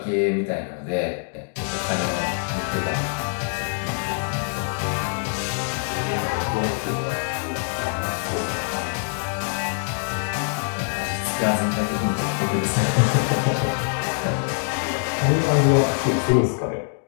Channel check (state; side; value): silent; right; digital silence